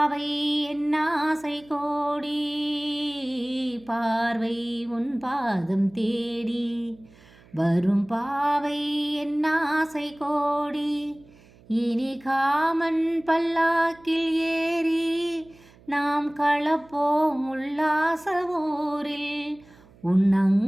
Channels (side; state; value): right; noise; hum, 26 dB below the sound